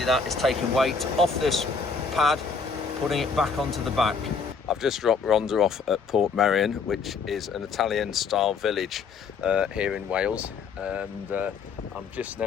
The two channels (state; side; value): quieter; right; 5.2 dB